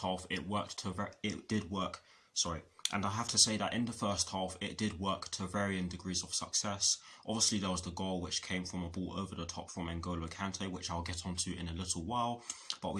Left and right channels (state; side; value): identical; both; correlation 1.00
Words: half, it did work to varying degrees of success. Obviously, there was the goal which came from a ball over the top from N'Golo Kante, which I'll get onto in a little while. But